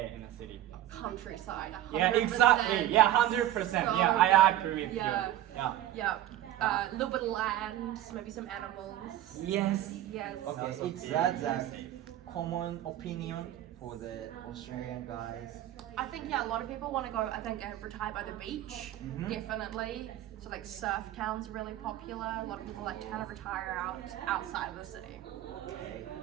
in the city? Countryside. 100%. Yeah, exactly. Yeah, 100%. So Yeah, I agree with yeah. you. Yeah. Yeah. A little bit of land, maybe some animals. Yes. Yes. Okay, Also it's very that easy. common opinion for the Australian guys. I think a lot of people want to go. I think retire by the beach, definitely. So surf towns are really popular. A lot of people like to kind of retire outside of the city. Okay.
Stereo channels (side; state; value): left; quieter; 13.3 dB